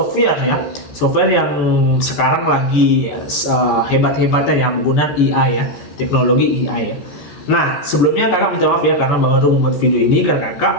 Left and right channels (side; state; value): right; late; 14 ms